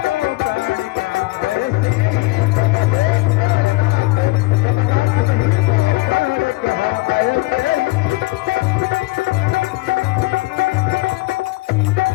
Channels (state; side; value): quieter; right; 21.3 dB